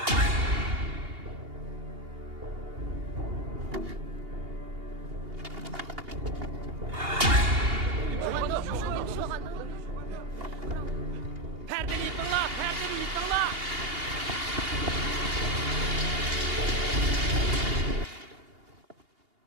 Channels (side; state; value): left; late; 2.8 ms